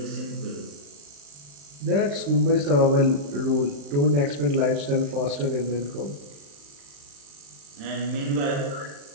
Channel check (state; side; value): late; left; 35 ms